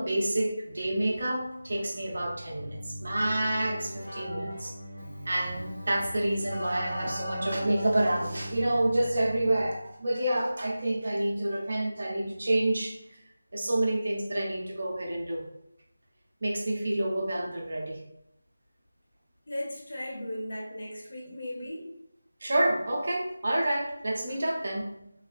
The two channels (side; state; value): both; inverted; correlation -0.95